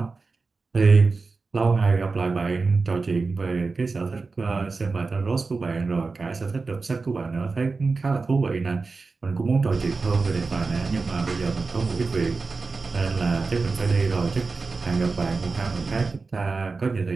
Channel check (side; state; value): left; quieter; 4.1 dB